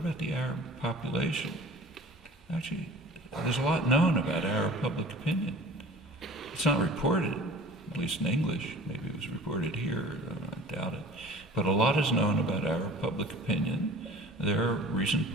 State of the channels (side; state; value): both; normal; correlation 0.44